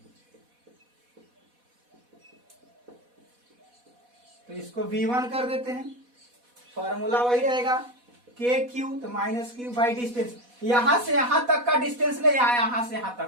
तो इसको V1 कर देते हैं, फॉर्मूला वही रहेगा के क्यू, तो माइनस क्यू बाई डिस्टेंस। यहां से यहां तक का डिस्टेंस ले, यहां से यहां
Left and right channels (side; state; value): left; late; 4.1 ms